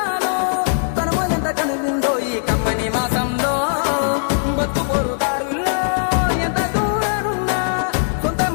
తనము ఎంత కనువిందో ఈ కమ్మని మాసంలో బతుకు పొరుదారుల్లో ఎంత దూరానున్నా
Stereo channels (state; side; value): silent; right; digital silence